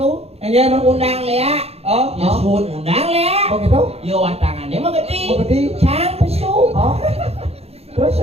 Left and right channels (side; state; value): left; late; 0.29 ms